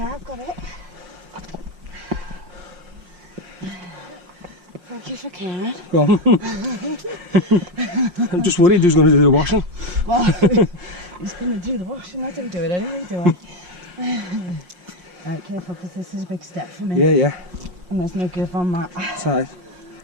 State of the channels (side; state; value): left; late; 5.6 ms